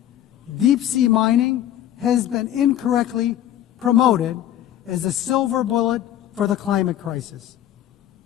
deep-sea mining has been incorrectly promoted as a silver bullet for the climate crisis.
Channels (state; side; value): quieter; right; 11.8 dB